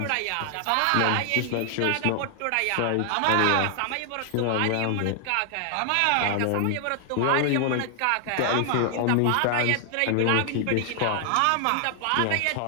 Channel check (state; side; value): different; both; correlation 0.00